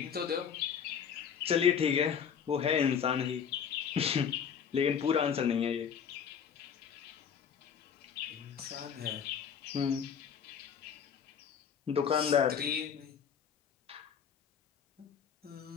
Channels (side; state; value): right; quieter; 7.5 dB